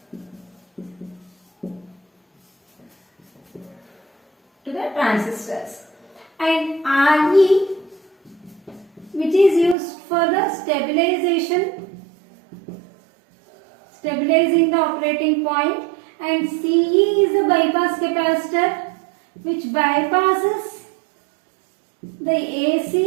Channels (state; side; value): drops out; left; at 9.8 s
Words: To the transistors. And RE, which is used for the stabilizing the operating point, and CE is a bypass capacitor which bypasses the